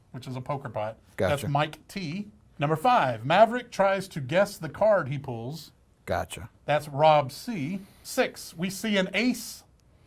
which is a poker pot. Gotcha. That's Mike T. Number 5, Maverick tries to guess the card he pulls. Gotcha. That's Rob C. 6, we see an ace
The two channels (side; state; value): both; identical; correlation 1.00